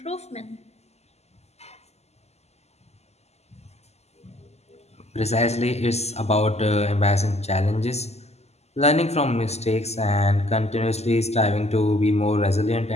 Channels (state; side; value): late; right; 0.31 ms